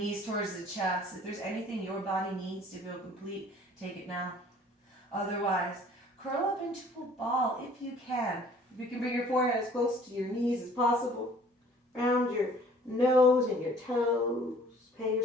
towards the chest. If there's anything your body needs to feel complete, take it now. Otherwise, curl up into a ball if you can. If you can bring your forehead as close to your knees as possible. Round your nose and your toes. Pay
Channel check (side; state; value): both; normal; correlation 0.53